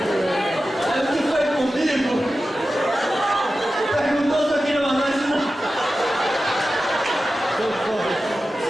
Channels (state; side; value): normal; both; correlation 0.93